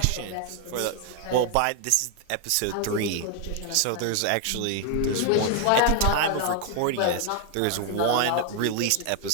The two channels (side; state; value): both; different; correlation 0.00